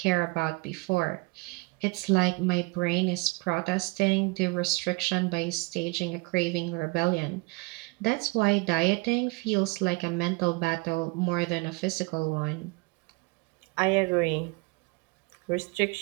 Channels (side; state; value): left; quieter; 26.7 dB